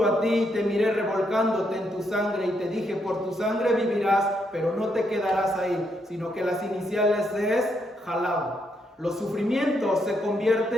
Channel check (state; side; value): normal; both; correlation 0.77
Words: a ti y te miré revolcándote en tu sangre y te dije, por tu sangre vivirás, pero no te quedarás ahí, sino que las iniciales es Halab. Los sufrimientos se